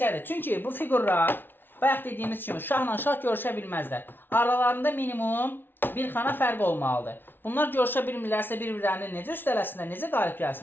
Çünki bu fiqurlar, bayaq dediyimiz kimi, şahla şah görüşə bilməzlər. Aralarında minimum bir xana fərq olmalıdır. Bunlar görüşə bilmirlərsə bir-birlərini necə üstələsinlər, necə qalib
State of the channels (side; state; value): right; late; 0.10 ms